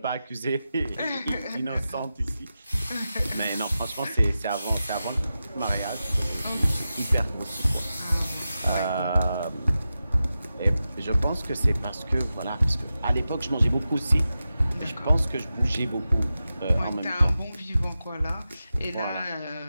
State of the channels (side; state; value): both; inverted; correlation -0.92